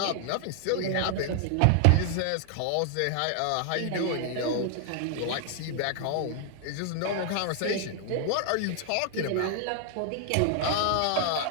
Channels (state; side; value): different; both; correlation 0.00